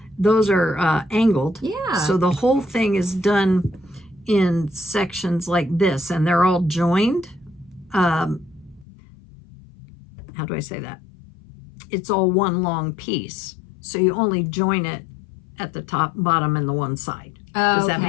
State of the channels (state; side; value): drops out; right; at 8.8 s